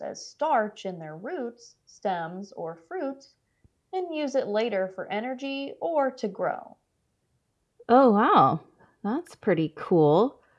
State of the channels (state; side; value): identical; both; correlation 1.00